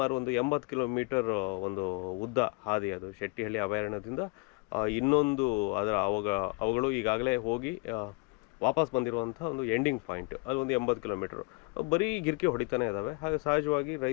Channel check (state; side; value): quieter; right; 29.9 dB